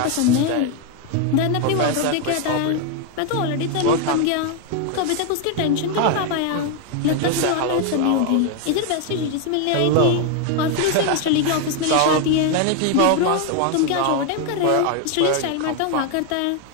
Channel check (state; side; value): different; both; correlation 0.01